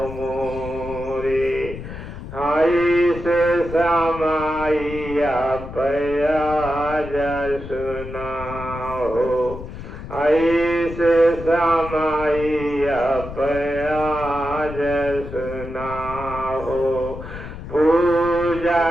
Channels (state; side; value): noise; left; rumble, 11 dB below the sound